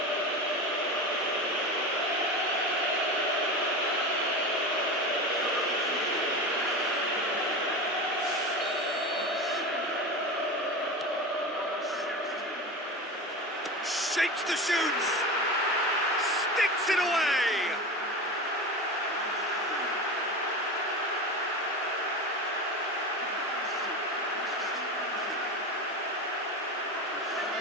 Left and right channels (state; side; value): normal; both; correlation 0.26